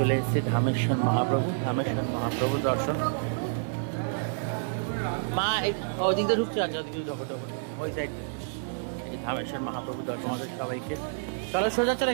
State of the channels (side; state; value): left; silent; digital silence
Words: এসেছি ধামেশ্বর মহাপ্রভু দর্শন। মা ওদিক দিয়ে ঢুকছে, আচ্ছা ওদিকে ঢোকো ওই সাইড। ধামেশ্বর মহাপ্রভু দর্শন আমাদের সবাইকে। চলো সোজা চলো,